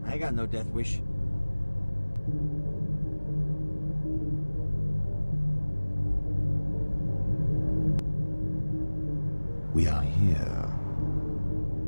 I got no death wish. We are here.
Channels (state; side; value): inverted; both; correlation -1.00